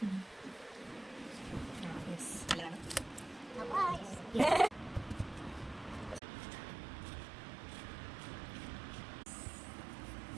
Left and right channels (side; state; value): left; drops out; at 6.2 s